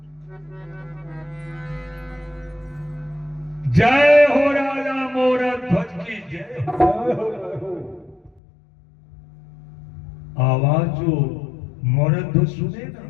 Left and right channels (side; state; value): right; drops out; at 8.4 s